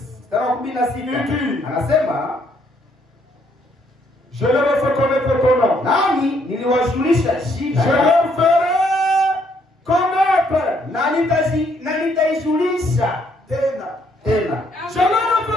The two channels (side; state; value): both; normal; correlation 0.69